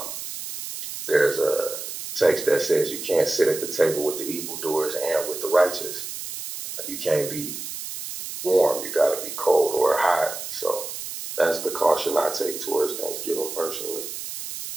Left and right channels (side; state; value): right; noise; hiss, 8 dB below the sound